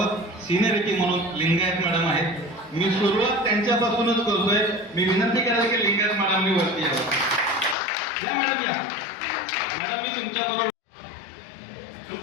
सिनियरिटी म्हणून लिंगायत मॅडम आहेत. मी सुरुवात त्यांच्यापासूनच करतोय. मी विनंती करायला की लिंगायत मॅडमनी वरती यावं. या मॅडम या. मॅडम मी तुमच्याबरोबर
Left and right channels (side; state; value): right; drops out; at 7.8 s